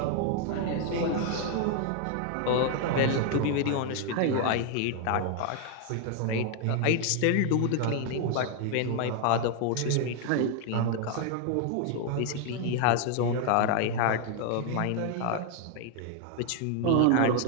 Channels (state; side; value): different; both; correlation 0.00